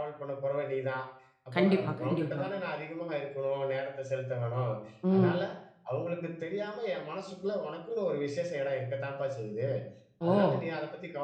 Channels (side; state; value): both; identical; correlation 1.00